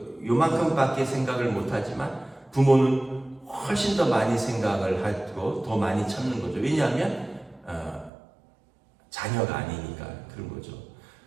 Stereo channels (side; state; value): left; drops out; at 8.1 s